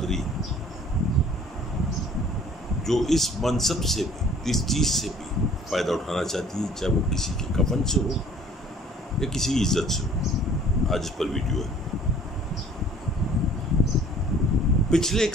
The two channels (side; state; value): both; normal; correlation 0.52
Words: جو اس منصب سے بھی، اس چیز سے بھی فائدہ اٹھانا چاہتی ہے، چاہے وہ کسی کے کفن سے ہو یا کسی کی عزت سے ہو۔ آج اس پر ویڈیو ہے۔ پچھلے